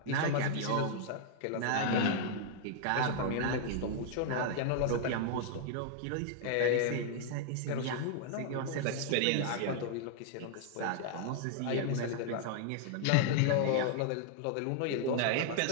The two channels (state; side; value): different; both; correlation -0.01